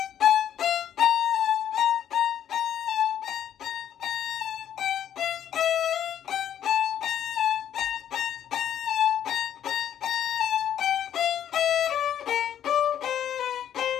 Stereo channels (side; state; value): right; quieter; 10.1 dB